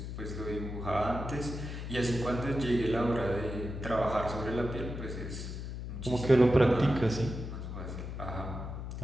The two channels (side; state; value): left; noise; hum, 7 dB below the sound